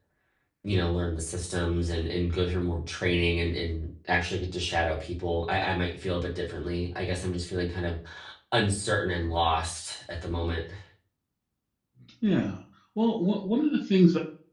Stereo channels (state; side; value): identical; both; correlation 1.00